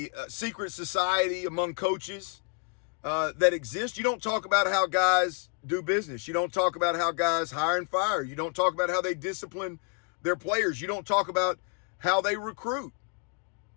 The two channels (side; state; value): right; quieter; 38.8 dB